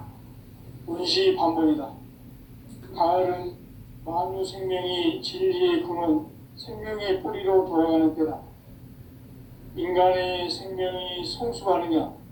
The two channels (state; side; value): identical; both; correlation 1.00